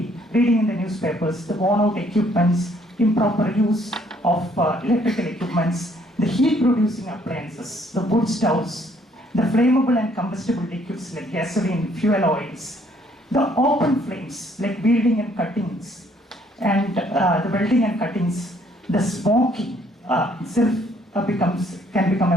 reading in the newspapers. The worn out equipments, improper use of electrical equipments, the heat producing appliances, the wood stoves, the flammable and combustible liquids like gasoline, fuel oils, the open flames like welding and cuttings, and the welding and cuttings, the smoking itself can become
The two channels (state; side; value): normal; both; correlation 0.65